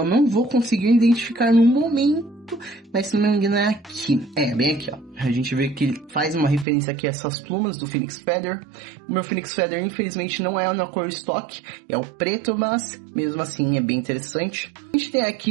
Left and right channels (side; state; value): left; drops out; at 6.7 s